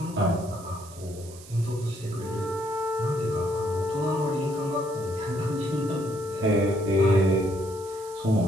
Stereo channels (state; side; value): noise; right; hiss, 18 dB below the sound